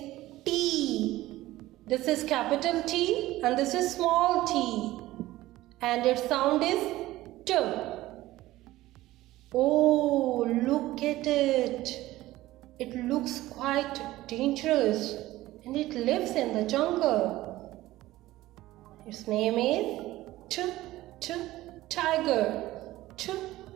T. This is capital T and this is small t. And its sound is T. Oh, look at it. It looks quite dangerous and it lives in the jungle. Its name is tiger.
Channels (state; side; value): quieter; left; 16.7 dB